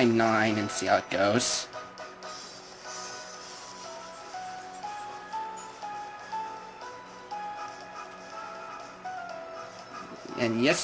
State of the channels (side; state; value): both; identical; correlation 1.00